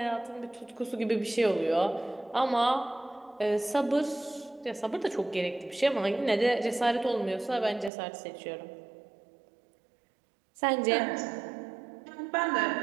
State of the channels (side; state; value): left; drops out; at 7.9 s